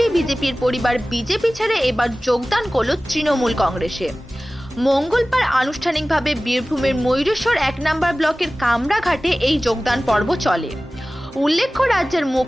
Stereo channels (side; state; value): both; normal; correlation 0.97